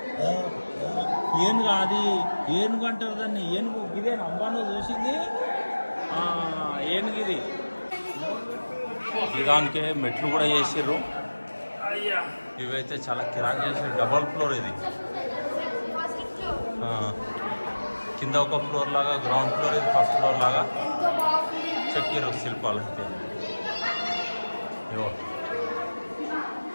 ఏనుగు, అది ఏనుగు అంటారు దాన్ని. ఏనుగు ఇదే అంబాను చూసింది. ఏనుగు ఇది. దానికే మెట్లు కూడా చేసిర్రు. ఇవైతే చాలా కిరాక్ చేసారు. డబల్ ఫ్లోర్ ఇది. కింద ఒక ఫ్లోర్ లాగా, గ్రౌండ్ ఫ్లోర్ ఇది ఫస్ట్ ఫ్లోర్ లాగా చెక్కిరు శిల్పాలు. అయితే ఇవో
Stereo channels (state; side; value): inverted; both; correlation -1.00